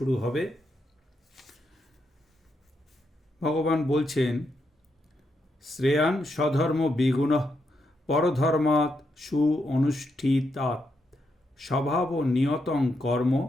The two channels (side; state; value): both; normal; correlation 0.81